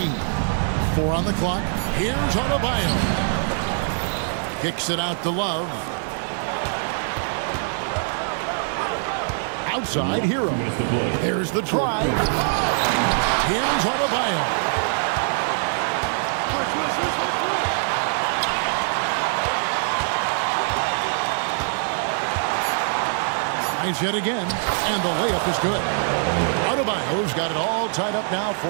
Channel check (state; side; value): silent; left; digital silence